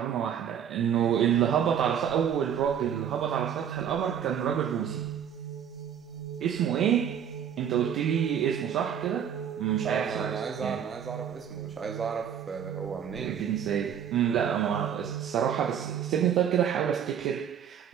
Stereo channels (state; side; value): quieter; left; 8.7 dB